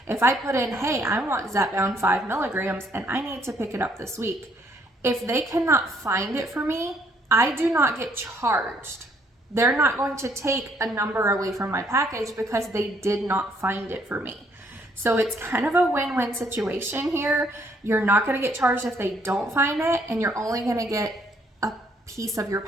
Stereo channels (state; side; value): normal; both; correlation 0.67